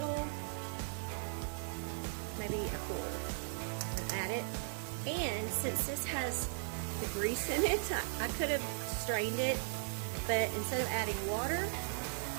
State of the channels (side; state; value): left; silent; 53 dB below the other